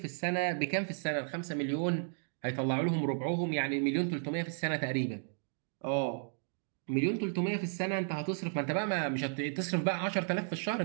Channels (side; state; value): left; silent; digital silence